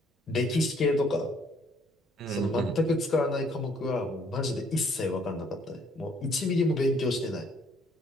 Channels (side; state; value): both; normal; correlation 0.64